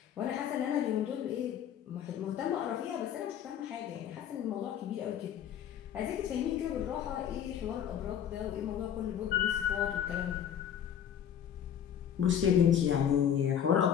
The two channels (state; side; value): quieter; right; 9.3 dB